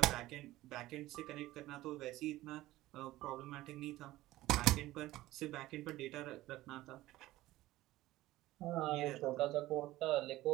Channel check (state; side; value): quieter; left; 16.7 dB